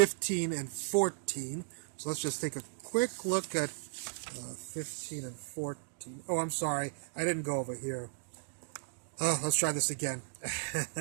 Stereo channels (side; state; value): left; silent; digital silence